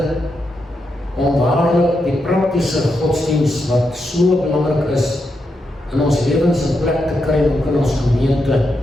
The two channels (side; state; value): both; normal; correlation 0.84